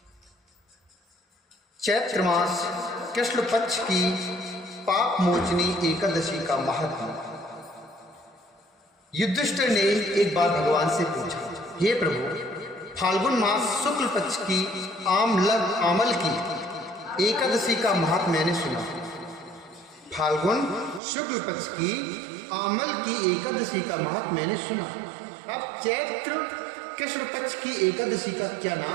चैत्र मास कृष्ण पक्ष की पाप मोचनी एकादशी का महत्व। युधिष्ठिर ने एक बार भगवान से पूछा, हे प्रभु, फाल्गुन मास शुक्ल पक्ष की आमल की एकादशी का महत्व मैंने सुना। फाल्गुन शुक्ल पक्ष की आमल की एकादशी का महत्व मैंने सुना। अब चैत्र कृष्ण पक्ष की एकादशी का क्या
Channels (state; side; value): drops out; left; at 21.0 s